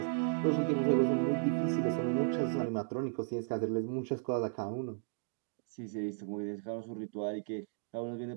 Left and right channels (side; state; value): left; silent; digital silence